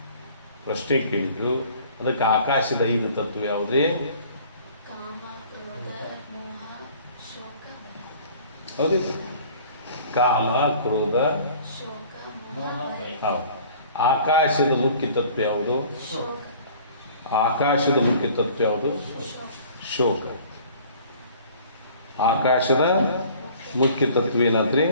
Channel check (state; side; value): inverted; both; correlation -0.50